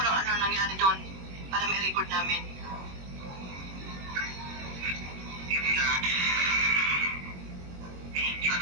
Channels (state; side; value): late; left; 22 ms